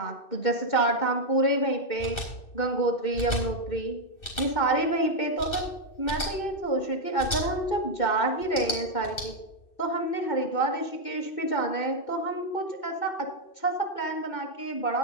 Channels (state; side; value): late; right; 2.6 ms